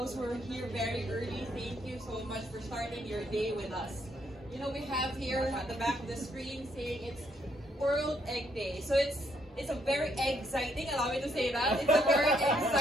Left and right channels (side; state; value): both; normal; correlation 0.73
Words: who are here very early, thank you so much for starting your day with us. You know, we have here at the back of the screen saying it's World Egg Day. So it's a very exciting, allow me to say that, it's a very